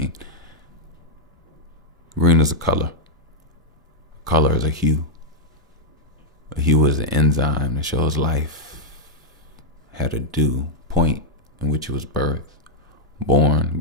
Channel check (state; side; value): normal; both; correlation -0.05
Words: green is a color. Color is a hue. A hue is an enzyme that shows life had a due point in which it was birthed, born,